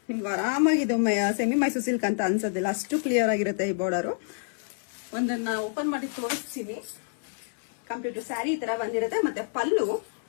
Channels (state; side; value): silent; right; 60 dB below the other